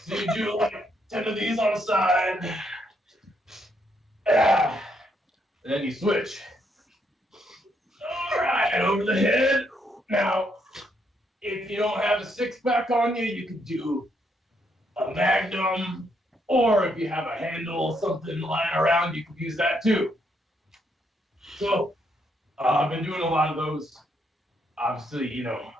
you do like 10 of these on the side. Yeah. And then you switch. All right, over the head. Now, if you don't have a 6-pack on you, you can do a magnum. Or if you have a handle, something lying around, you can use that too. So, I've been doing a lot of those. Obviously,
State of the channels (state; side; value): normal; both; correlation 0.75